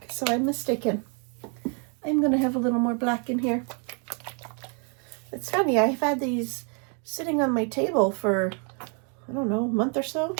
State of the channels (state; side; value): quieter; left; 38.7 dB